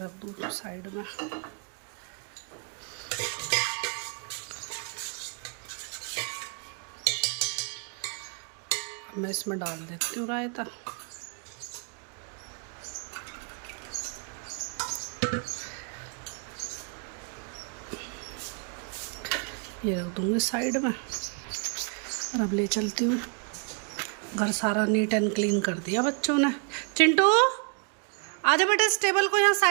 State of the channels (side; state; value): left; quieter; 40.0 dB